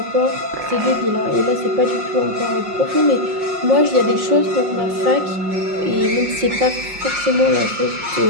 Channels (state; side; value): late; left; 5.6 ms